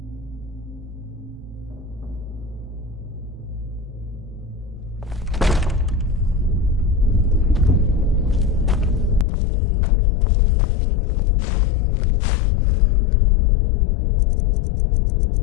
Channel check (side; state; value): right; drops out; at 9.2 s